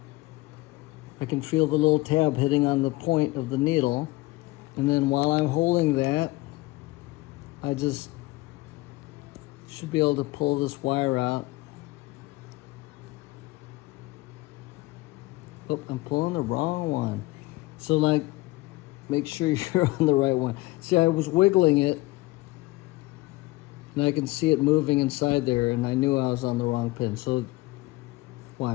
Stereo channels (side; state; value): right; quieter; 20.4 dB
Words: I can feel the little tab hitting on the point of the needle, and then while I'm holding that, I just should be able to pull this wire out. Oh, I'm pulling the wrong one. So like, make sure you're on the right one. See, I was wiggling it, and I can see it moving inside there, and I knew I was on the wrong pin. So